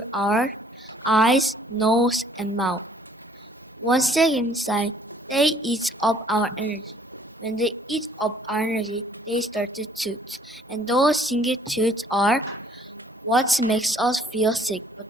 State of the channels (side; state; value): both; normal; correlation 0.59